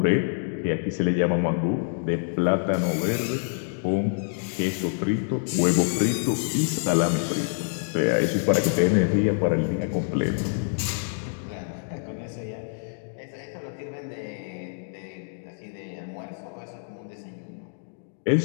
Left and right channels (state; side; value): silent; right; digital silence